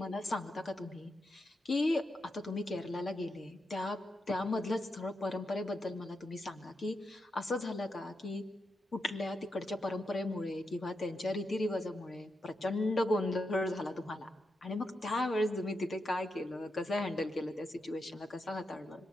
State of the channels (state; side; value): normal; both; correlation 0.85